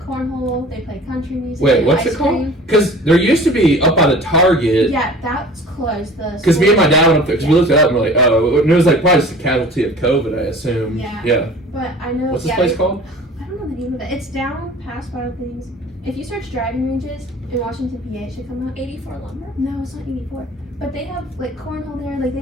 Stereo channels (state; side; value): normal; both; correlation 0.44